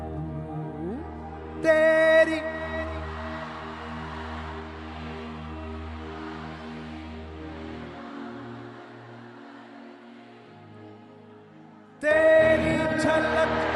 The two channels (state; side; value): identical; both; correlation 1.00